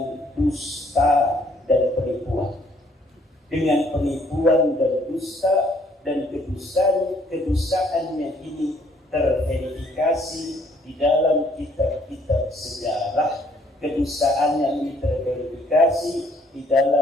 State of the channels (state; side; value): normal; both; correlation 0.64